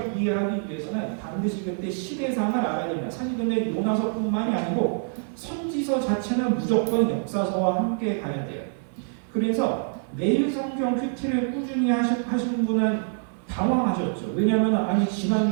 이해하기 위해서는 반드시 그때 시대상을 알아야 됩니다. 사실 근데 요나서뿐만이 아니고 선지서 자체는 무조건 역사서와 함께 가야 돼요. 그래서 매일 성경 큐티를 꾸준히 하신 분은 당황하셨죠. 왜냐하면 아니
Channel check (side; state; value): left; silent; 55 dB below the other